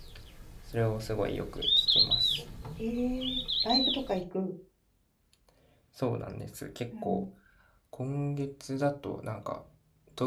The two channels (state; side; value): identical; both; correlation 1.00